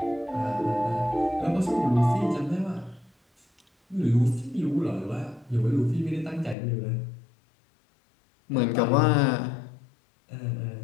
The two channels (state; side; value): drops out; right; at 6.6 s